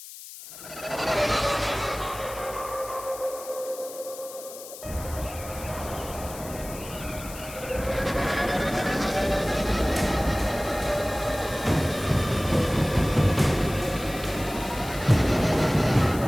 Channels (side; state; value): left; noise; hiss, 14 dB below the sound